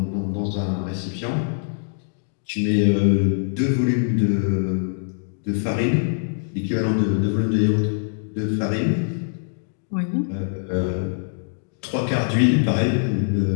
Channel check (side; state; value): right; silent; digital silence